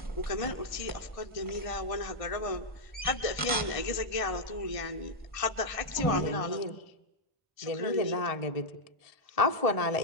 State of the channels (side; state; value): right; late; 1.5 ms